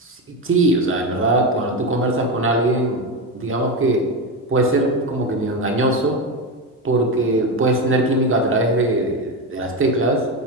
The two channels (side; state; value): both; normal; correlation 0.15